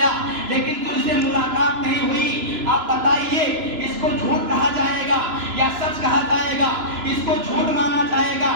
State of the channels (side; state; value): left; late; 2.9 ms